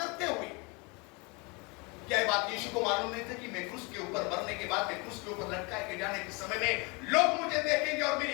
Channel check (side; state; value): right; quieter; 29.0 dB